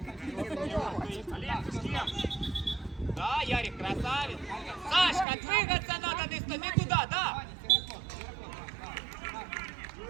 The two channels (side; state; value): left; drops out; at 5.2 s